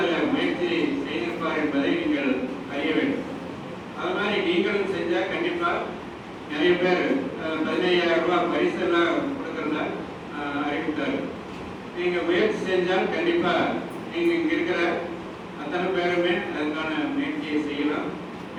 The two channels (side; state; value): both; identical; correlation 1.00